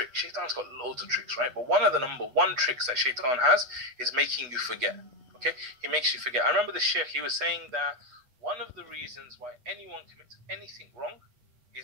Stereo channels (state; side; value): late; left; 8.2 ms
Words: Shaitan's got loads of tricks, right? But one of the number one tricks that Shaitan has is making you forget, okay? He makes you forget. I remember the Sheikh, he was saying that one of the reasons why anyone commits anything wrong